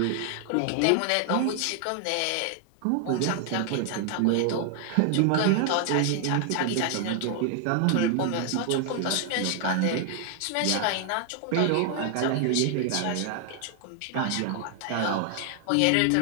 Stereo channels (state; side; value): different; both; correlation 0.00